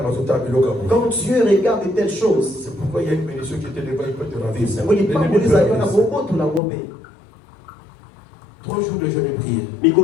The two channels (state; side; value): drops out; right; at 6.6 s